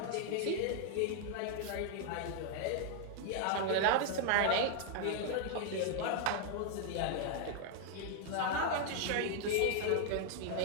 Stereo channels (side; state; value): both; different; correlation 0.00